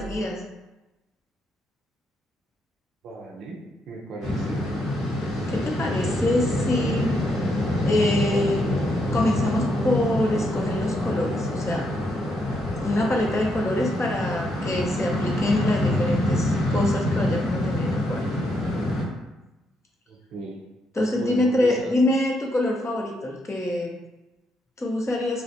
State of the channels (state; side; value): normal; both; correlation 0.78